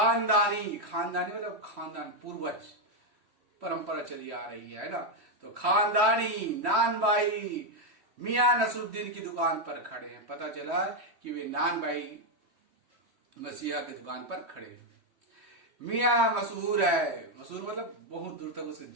मतलब खानदान, पूर्वज परंपरा चली आ रही है ना। तो खानदानी नान बाई मियां नसरुद्दीन की दुकान पर खड़े हैं। पता चला कि वे नान बाई मसीहा की दुकान पर खड़े हैं। मियां मशहूर मतलब बहुत दूर तक उसकी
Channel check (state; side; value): late; left; 3.1 ms